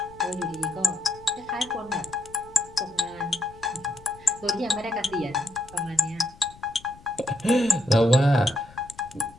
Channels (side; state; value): left; noise; rumble, 22 dB below the sound